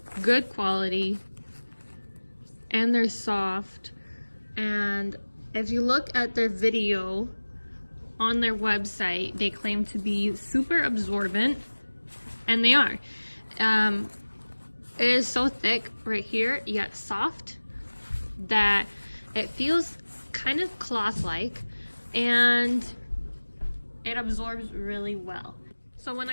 good quality and they're soft. And if you look at their video on their website, they claim to be super absorbent, and they are. It is so thick right here, yet soft, that it feels kind of cloth-like, and it absorbs really well. So when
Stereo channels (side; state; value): both; inverted; correlation -1.00